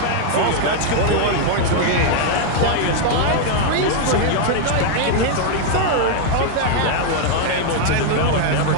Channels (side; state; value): both; different; correlation 0.00